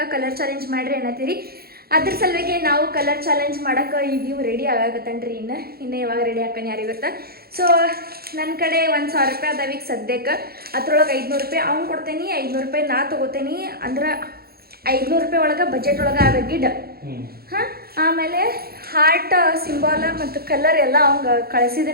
ಕಲರ್ ಚಾಲೆಂಜ್ ಮಾಡ್ರಿ ಅನ್ನತ್ತೀರಿ. ಅದ್ರ ಸಲುವಾಗಿ ನಾವು ಕಲರ್ ಚಾಲೆಂಜ್ ಮಾಡೋಕೆ ಈಗ ರೆಡಿ ಆಗಾಕತ್ತನ್ರಿ. ಇನ್ನು ಯಾವಾಗ ರೆಡಿ ಹಾಕನ್ ಯಾರಿಗೆ ಗೊತ್ತಾ. ಸೊ ನನ್ನ ಕಡೆ 1,000 ರೂಪಾಯಿ ಅದಾವ ಈಗ ಸದ್ಯಕ್ಕೆ. ಅದ್ರೊಳಗೆ 500 ರೂಪಾಯಿ ಅವ್ನು ಕೊಡ್ತೇನೆ, 500 ರೂಪಾಯಿ ನಾ ತೊಗೋತೇನೆ. ಅಂದ್ರೆ 500 ರೂಪಾಯಿ ಒಳಗೆ ಬಜೆಟ್ ಒಳಗೆ ಆಗ ಗಿಡ್. ಹಾಂ, ಆಮೇಲೆ ಹಾರ್ಟ್ ಸಿಂಬಾಲ ಮತ್ತು ಕಲರ್ ಎಲ್ಲ ಅವಂಗೆ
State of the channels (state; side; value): late; left; 0.45 ms